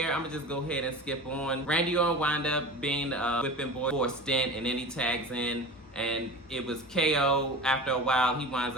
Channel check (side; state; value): both; normal; correlation 0.33